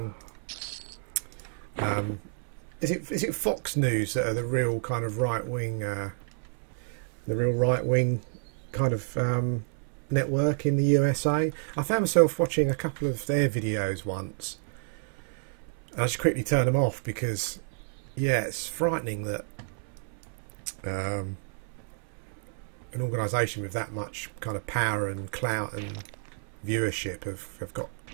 Is it Fox News that are the real kind of right wing kind of network in the USA? I found myself watching a couple of their videos once, and I just quickly turned them off because, yeah, it's frightening that. An organisation with that much kind of power and clout and viewership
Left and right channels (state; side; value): silent; left; 58 dB below the other